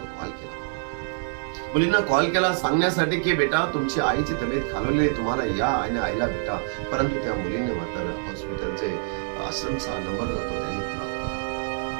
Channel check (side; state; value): left; silent; 61 dB below the other